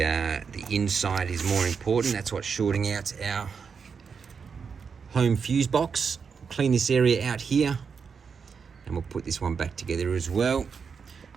inside is more important. That's what's shorting out our home fuse box. Clean this area out here, and we'll put this one back together as well.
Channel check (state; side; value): quieter; left; 5.9 dB